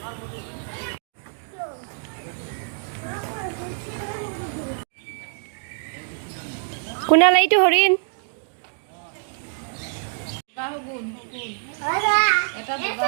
কুনাল এইটো হৰিণ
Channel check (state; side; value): silent; left; 62 dB below the other